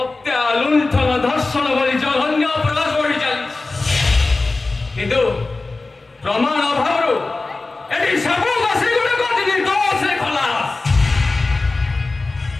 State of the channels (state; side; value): quieter; right; 3.4 dB